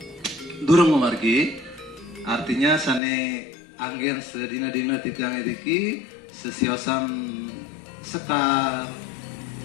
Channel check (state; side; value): drops out; right; at 3.0 s